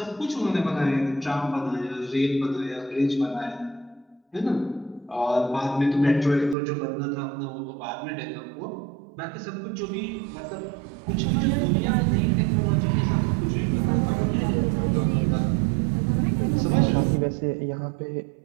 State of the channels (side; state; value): left; drops out; at 6.6 s